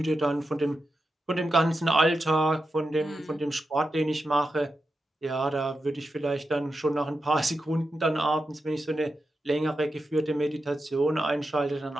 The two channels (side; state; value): both; normal; correlation 0.89